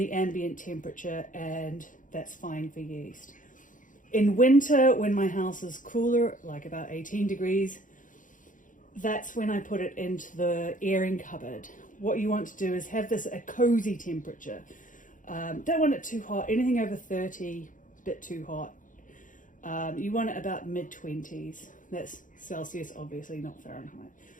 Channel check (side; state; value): right; late; 0.38 ms